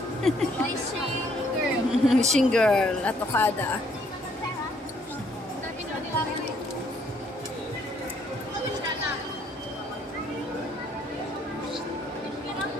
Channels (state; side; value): normal; both; correlation 0.66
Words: Wishing girl. Wishing girl at Okada.